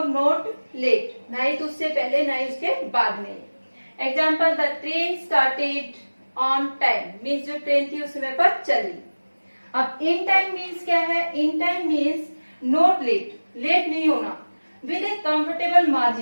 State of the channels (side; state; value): both; inverted; correlation -1.00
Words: नॉट लेट, ना ही तो उससे पहले ना ही उसके बाद में। Example, the train started on time means जो ट्रेन थी उस समय पर चली। अब इन टाइम मीन्स क्या है? In time means not late, late नहीं होना। With a comfortable